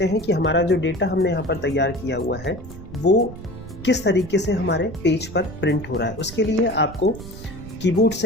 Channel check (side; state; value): right; noise; rumble, 14 dB below the sound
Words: हैं कि हमारा जो डेटा हमने यहाँ पर तैयार किया हुआ है वो किस तरीके से हमारे पेज पर प्रिंट हो रहा है। उसके लिए आपको कीबोर्ड